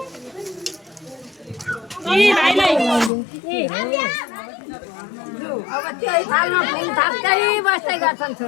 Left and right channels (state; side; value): drops out; right; at 3.1 s